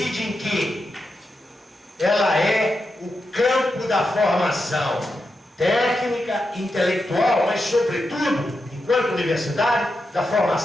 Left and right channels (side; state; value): both; normal; correlation 0.87